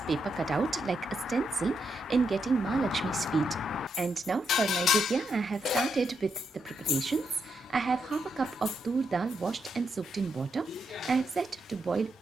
cutout like a stencil in getting Ma Lakshmi's feet. And now for my Vidya, I have started with the preparations. I have half a cup of tur dal washed and soaked in water. I have set to boil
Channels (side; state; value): both; normal; correlation 0.81